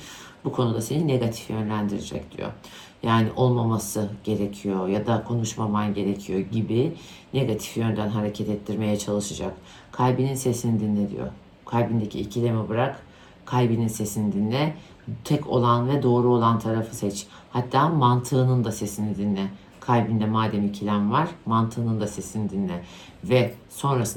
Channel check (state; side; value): identical; both; correlation 1.00